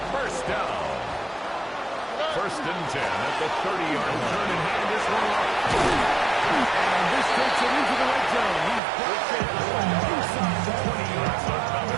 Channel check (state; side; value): drops out; left; at 8.8 s